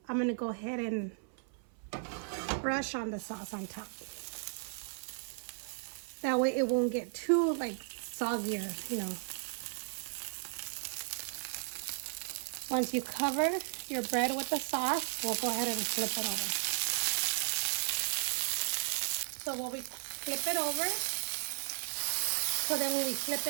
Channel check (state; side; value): silent; left; 54 dB below the other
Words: I'm going to go ahead and brush on the sauce on top. That way it won't get too like soggier, you know. Once you cover your bread with the sauce, we'll go ahead and flip it over. So when we flip it over, so then when we flip